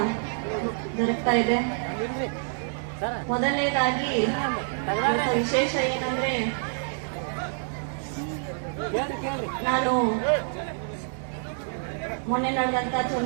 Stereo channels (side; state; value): left; silent; digital silence